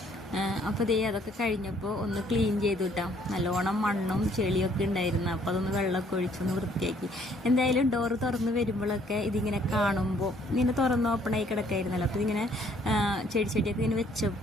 അപ്പോൾ ദേ അതൊക്കെ കഴിഞ്ഞപ്പോൾ ഒന്ന് ക്ലീൻ ചെയ്തു കിട്ടാം. നല്ലോണം മണ്ണും ചെളിയൊക്കെ ഉണ്ടായിരുന്നു. അപ്പോൾ അതൊന്ന് വെള്ളമൊക്കെ ഒഴിച്ചൊന്ന് വൃത്തിയാക്കി. എന്തായാലും ഡോറ് തുറന്ന് വരുമ്പോഴൊക്കെ ഇതിങ്ങനെ കാണുമ്പോൾ ഇങ്ങനെ തുറന്ന് ഓപ്പണായി കിടക്കായിരുന്നല്ലോ. അപ്പോൾ ഇതിങ്ങനെ ചെടിയൊക്കെ ഇങ്ങനെ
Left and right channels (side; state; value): both; normal; correlation 0.63